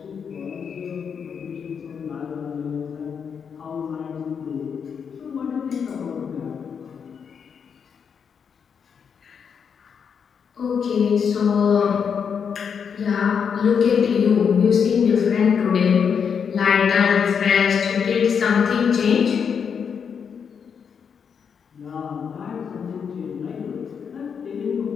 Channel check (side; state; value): right; quieter; 6.8 dB